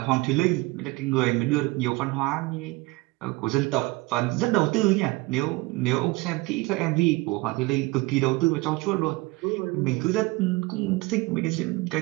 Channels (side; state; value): left; quieter; 22.5 dB